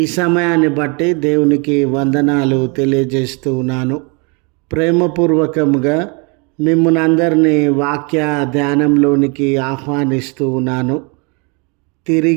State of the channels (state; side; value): quieter; left; 32.4 dB